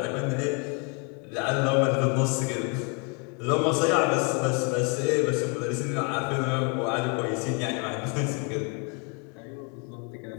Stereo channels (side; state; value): right; quieter; 34.6 dB